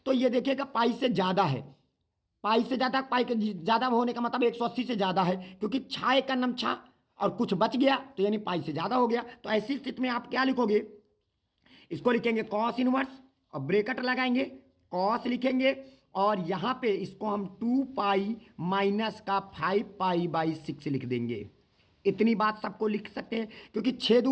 तो ये देखिएगा पाई से ज़्यादा है, पाई से ज़्यादा, पाई के ज़्यादा होने का मतलब 180 से ज़्यादा है, क्योंकि 6 का नम 6 और कुछ बच गया, तो यानी पाई से ज़्यादा हो गया। तो ऐसी स्थिति में आप क्या लिखोगे, इसको लिखेंगे कॉस इनवर्स और ब्रैकेट लगाएंगे, कॉस लिखेंगे, और यहाँ पे इसको हम 2 पाई माइनस का 5 पाई/6 लिख देंगे। इतनी बात सबको लिख सकते हैं, क्योंकि 6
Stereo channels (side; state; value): both; identical; correlation 1.00